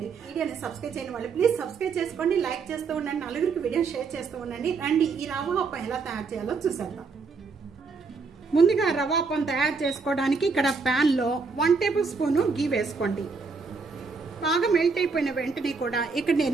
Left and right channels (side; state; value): left; quieter; 4.7 dB